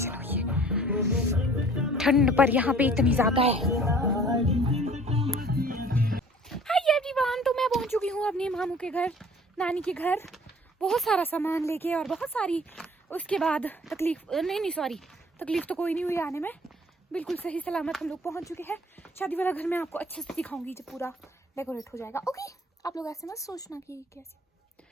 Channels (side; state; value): both; normal; correlation 0.52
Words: हुई है, ठंड पर यहाँ पे इतनी ज्यादा है। हाय एवरीवन, तो मैं पहुंच चुकी हूँ अपने मामू के घर, नानी के घर, बहुत सारा सामान लेके और बहुत सारी उसके बाद तकलीफ तो कोई नहीं हुई आने में, बिल्कुल सही सलामत हम लोग पहुंच चुके हैं। शादी वाला घर मैं आपको अच्छे से दिखाऊंगी जब पूरा डेकोरेट हो जाएगा। ओके, आप लोग ऐसे मत सोचना कि कैसे,